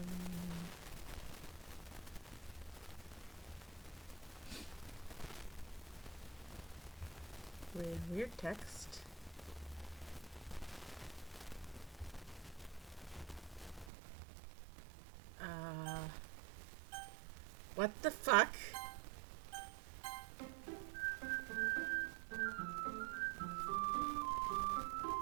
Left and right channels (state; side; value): drops out; left; at 13.9 s